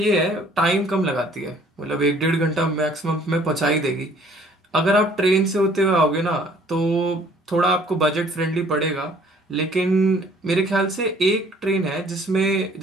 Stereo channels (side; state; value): both; normal; correlation 0.57